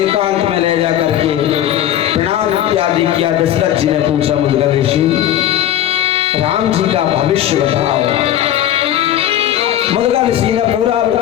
में ले जा करके प्रणाम इत्यादि किया। दशरथ जी ने पूछा मुग्दल ऋषि राम जी का भविष्य बताओ। मुद्गल ऋषि ने पूरा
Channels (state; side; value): quieter; right; 11.8 dB